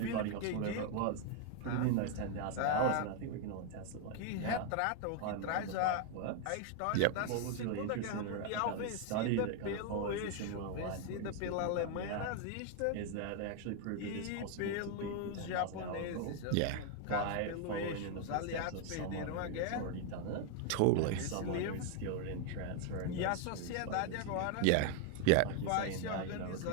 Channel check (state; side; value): different; both; correlation 0.01